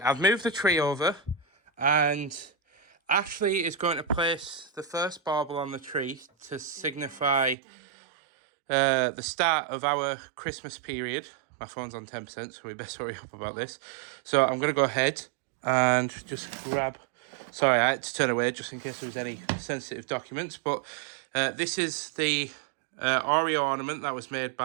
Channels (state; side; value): drops out; left; at 7.6 s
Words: I've moved the tree over, and Ashleigh is going to place the first bauble on the tree to signify the start of our Christmas period. My phone's on 10%, so we best hurry up about this. So I'm going to go ahead and just grab... Sorry, I had to turn away just in case there was any sensitive documents. But this is the Oreo ornament that was made